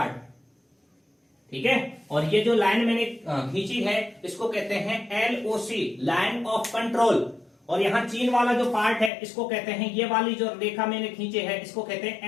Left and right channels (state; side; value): drops out; right; at 9.1 s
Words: ठीक है। और ये जो लाइन मैंने खींची है इसको कहते हैं एलओसी, लाइन ऑफ कंट्रोल। और यहाँ चीन वाला जो पार्ट है इसको कहते हैं, ये वाली जो रेखा मैंने खींचे है इसको कहते